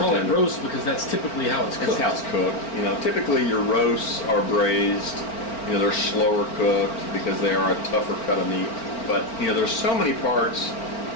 it roast because that's typically how it's cooked. That's how it's cooked. You know, typically your roasts are braised. You know, they're slower cooked because they are a tougher cut of meat. But you know, there's so many parts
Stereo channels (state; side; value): late; right; 4.4 ms